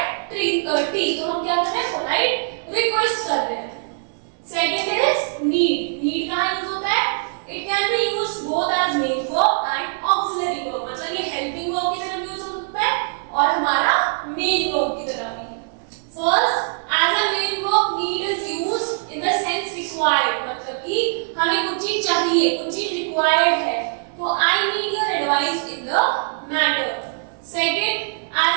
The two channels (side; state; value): left; silent; 64 dB below the other